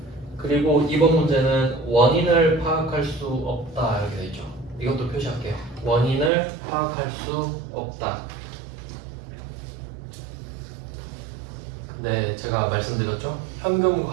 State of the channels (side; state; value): left; drops out; at 6.3 s